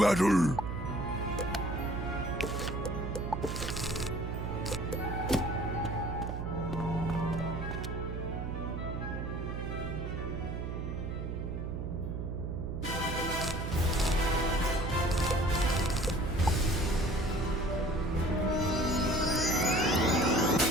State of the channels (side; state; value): right; noise; hum, 4 dB below the sound